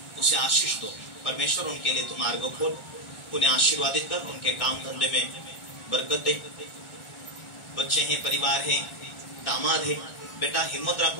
उसे आशीष दो। परमेश्वर उनके लिए तुम मार्ग खोल, उन्हें आशीर्वादित कर, उनके काम धंधे में बरकत दे। बच्चे हैं, परिवार है, दामाद है, बेटा हिम्मत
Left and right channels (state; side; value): late; right; 1.4 ms